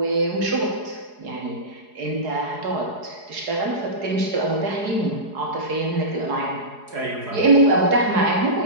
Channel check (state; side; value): late; left; 4.8 ms